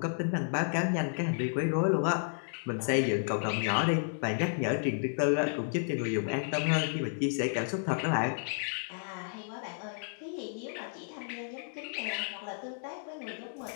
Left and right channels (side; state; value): right; silent; digital silence